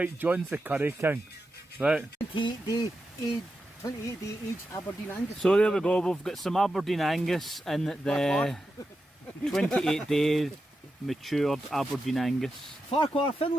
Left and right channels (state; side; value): normal; both; correlation 0.89